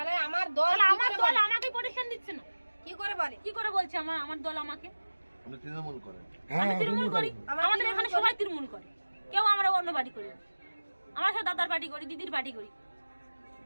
আমার দল আমাকে প্রোটেকশন দিচ্ছে না। কি করে বলে? কি করে বলছে আমার দল আমাকে? আপনি তৃণমূল করেন? আমি তৃণমূল করি, আমাদের এখানে সবাই তৃণমূল করে, কেউ আমরা অন্য পার্টি করি না। আমরা সব দাদার পার্টি করি, দিদির পার্টি করি।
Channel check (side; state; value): both; inverted; correlation -1.00